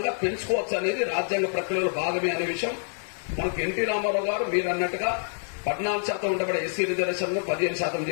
పెంచుకోవచ్చు అనేది రాజ్యాంగ ప్రక్రియలో భాగమే అనే విషయం మనకు ఎన్టీ రామారావు గారు మీరు అన్నట్టుగా 14% ఉండబడే ఎస్సీ రిజర్వేషన్లు 15%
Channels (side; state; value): right; silent; digital silence